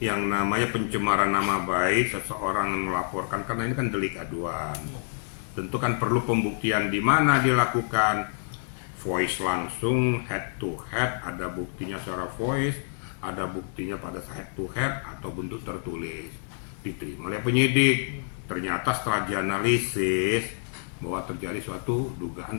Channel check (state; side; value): silent; right; digital silence